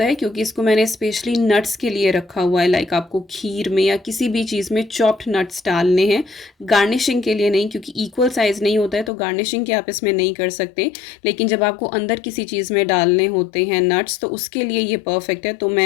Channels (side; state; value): right; drops out; at 9.1 s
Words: है क्योंकि इसको मैंने स्पेशली नट्स के लिए रखा हुआ है। लाइक आपको खीर में या किसी भी चीज़ में चॉप्ड नट्स डालने हैं, गार्निशिंग के लिए नहीं, क्योंकि इक्वल साइज़ नहीं होता है तो गार्निशिंग के आप इसमें नहीं कर सकते। लेकिन जब आपको अंदर किसी चीज़ में डालने होते हैं नट्स तो उसके लिए ये परफेक्ट है। तो